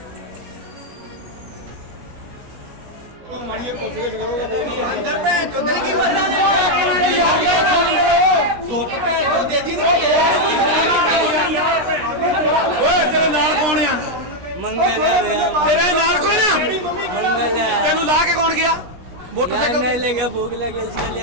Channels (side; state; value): left; late; 17 ms